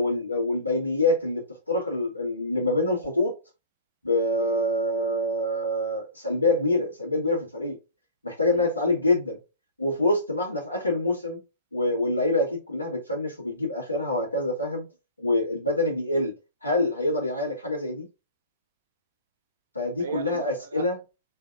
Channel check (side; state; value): both; inverted; correlation -0.44